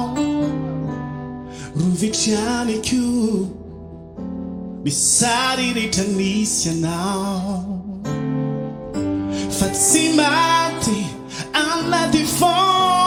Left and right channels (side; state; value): both; identical; correlation 1.00